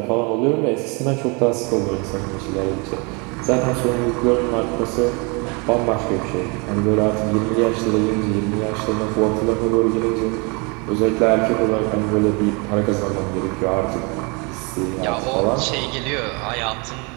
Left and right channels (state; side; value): quieter; left; 30.8 dB